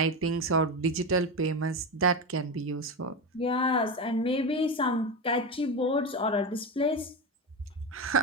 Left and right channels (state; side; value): normal; both; correlation 0.18